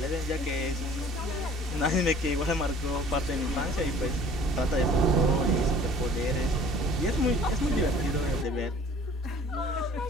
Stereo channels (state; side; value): normal; both; correlation 0.50